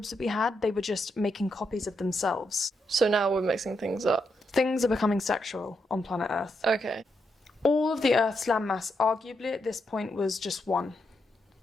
that we had, they were just making copies of themselves. So now we're mixing things up. Things are becoming sexual on planet Earth. Okay. All of the Earth's landmass, arguably at this point, was just one.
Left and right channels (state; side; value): normal; both; correlation 0.82